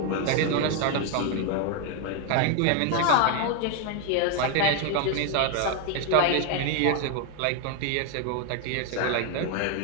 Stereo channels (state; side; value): different; both; correlation 0.01